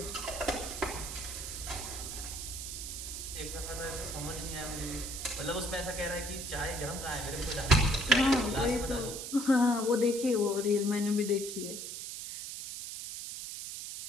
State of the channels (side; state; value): right; noise; hiss, 7 dB below the sound